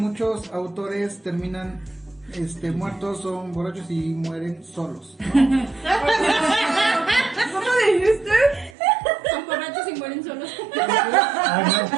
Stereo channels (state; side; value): drops out; left; at 8.7 s